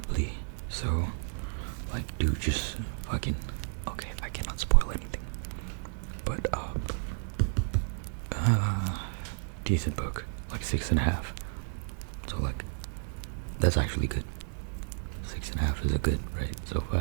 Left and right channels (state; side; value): silent; left; digital silence